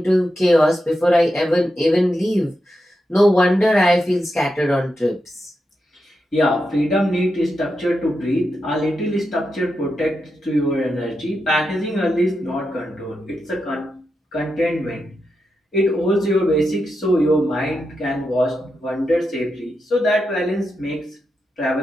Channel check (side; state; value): both; normal; correlation 0.87